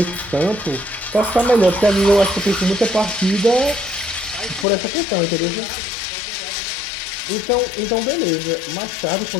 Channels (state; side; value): drops out; right; at 4.7 s